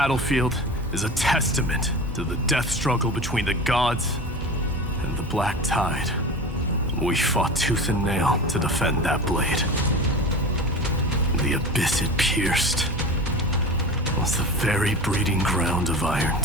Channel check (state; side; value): normal; both; correlation 0.32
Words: is a testament to the death struggle between the gods and the Black Tide. We fought tooth and nail to defend that blade. The abyss it pierced was the very breeding ground of